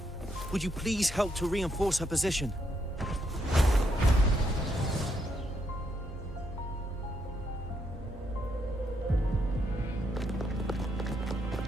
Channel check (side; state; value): both; normal; correlation 0.77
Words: Would you please help to reinforce her position?